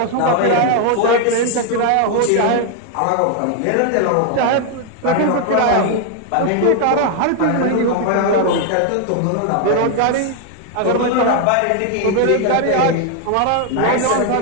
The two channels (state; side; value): different; both; correlation 0.00